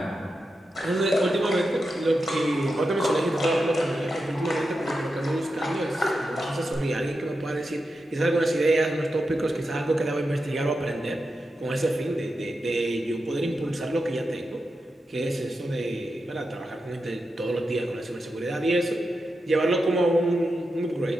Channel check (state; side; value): normal; both; correlation 0.89